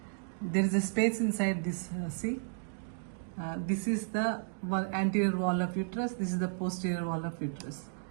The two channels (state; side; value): silent; left; digital silence